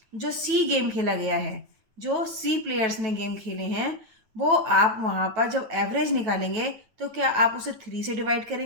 सी गेम खेला गया है, जो सी प्लेयर्स ने गेम खेले हैं, वो आप वहाँ पर जब एवरेज निकालेंगे तो क्या आप उसे 3 से डिवाइड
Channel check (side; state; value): left; late; 9.1 ms